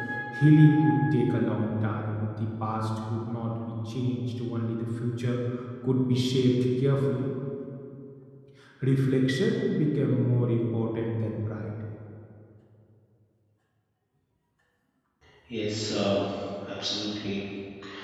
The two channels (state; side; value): identical; both; correlation 1.00